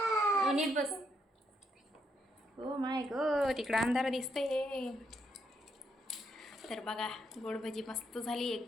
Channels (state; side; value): normal; both; correlation 0.76